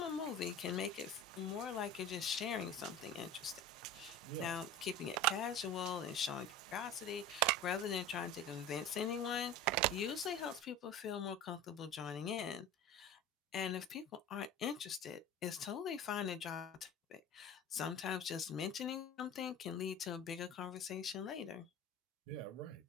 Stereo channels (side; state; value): both; normal; correlation 0.34